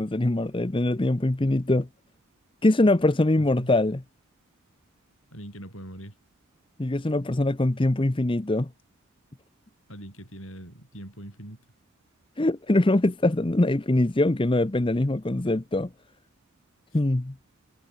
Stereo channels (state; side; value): normal; both; correlation 0.80